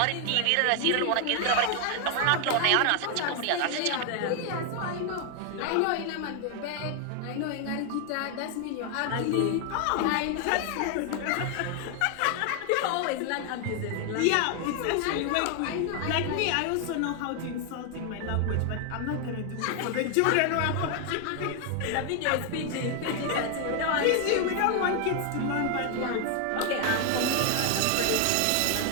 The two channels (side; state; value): both; different; correlation 0.00